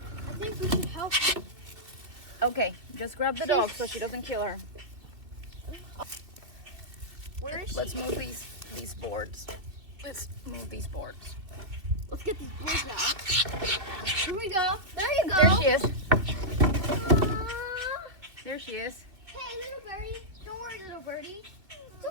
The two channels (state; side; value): late; left; 2.5 ms